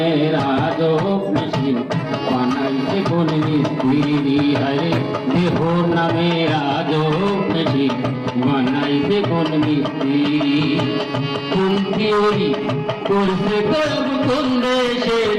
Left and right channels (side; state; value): both; identical; correlation 1.00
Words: রাজক মেশিন বানাইছে কোন মিস্ত্রি হরে দেহ নামে রাজক মেশিন বানাইছে কোন মিস্ত্রি কোন থিওরি করছে কলব কোন দেশে